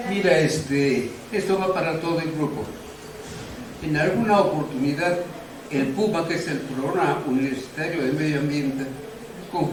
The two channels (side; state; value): both; identical; correlation 1.00